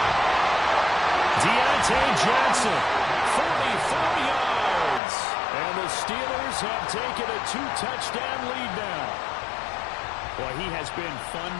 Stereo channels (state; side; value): drops out; right; at 5.0 s